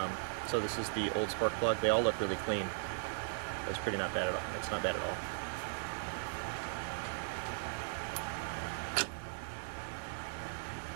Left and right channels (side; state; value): left; silent; digital silence